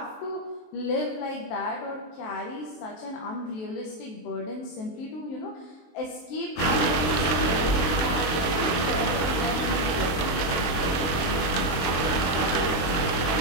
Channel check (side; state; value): right; late; 23 ms